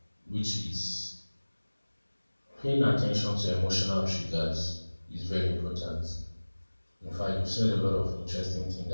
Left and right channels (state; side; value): inverted; both; correlation -1.00